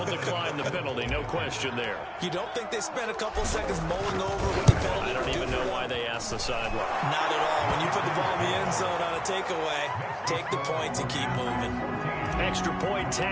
decline the penalty. No question there. You don't think they spent a couple seconds mulling over what the penalty? I don't even know why they asked the sideline. Not at all. When you put the ball in the end zone on a takeaway, take the points and keep moving. Extra point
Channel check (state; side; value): identical; both; correlation 1.00